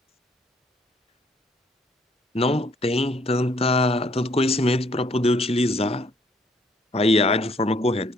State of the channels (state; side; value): normal; both; correlation 0.64